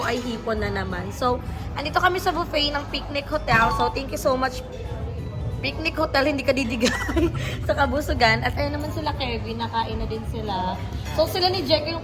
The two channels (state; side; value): identical; both; correlation 1.00